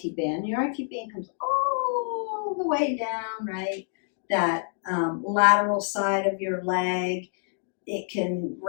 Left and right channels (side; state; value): right; silent; digital silence